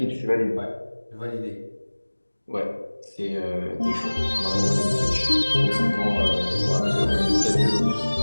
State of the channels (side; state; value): both; inverted; correlation -1.00